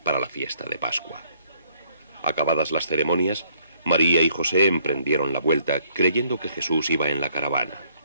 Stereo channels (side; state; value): both; inverted; correlation -0.66